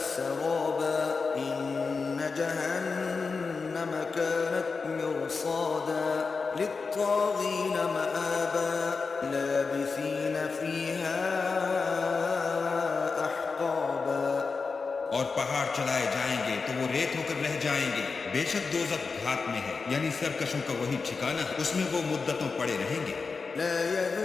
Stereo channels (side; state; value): right; quieter; 4.6 dB